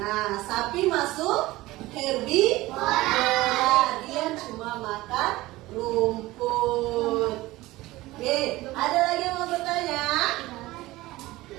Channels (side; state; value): left; quieter; 18.5 dB